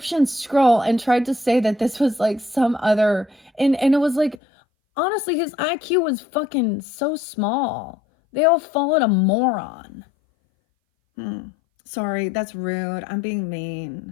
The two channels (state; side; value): drops out; right; at 4.4 s